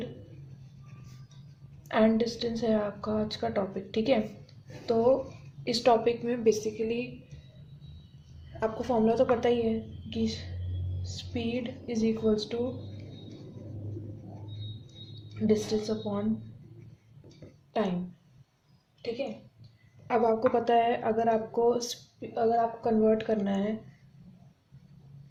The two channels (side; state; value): both; identical; correlation 1.00